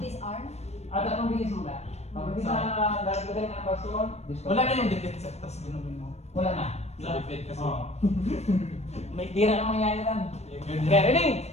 disarm. At anong bilis mo na? Kapag di na nalagay ng baston, Wala na yung dikit sa tas ginawin mo. Wala na. Sa dikit kasi. Oo. May tira na mangyayari lang. Ganyan. Okay, ready?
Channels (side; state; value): right; late; 0.31 ms